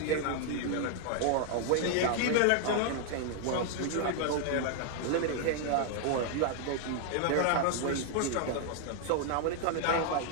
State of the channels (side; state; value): both; different; correlation 0.00